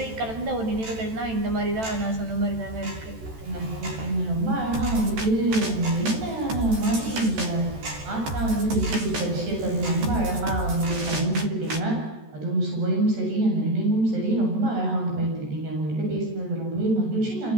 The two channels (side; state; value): left; late; 14 ms